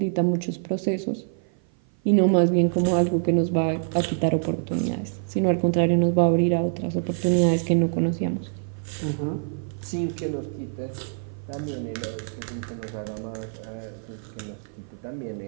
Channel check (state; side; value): silent; left; 55 dB below the other